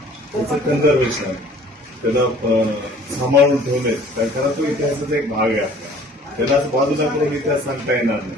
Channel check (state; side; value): normal; both; correlation 0.52